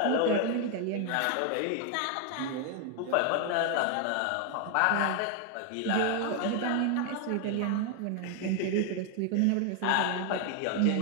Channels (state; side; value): different; both; correlation 0.00